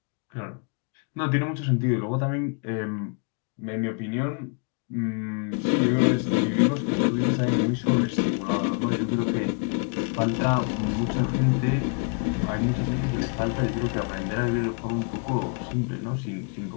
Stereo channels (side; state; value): right; quieter; 39.3 dB